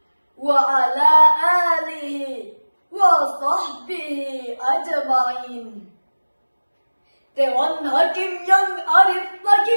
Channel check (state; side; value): inverted; both; correlation -1.00